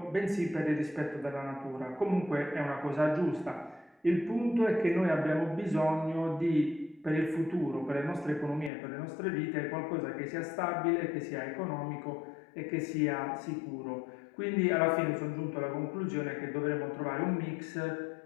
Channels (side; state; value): right; drops out; at 8.7 s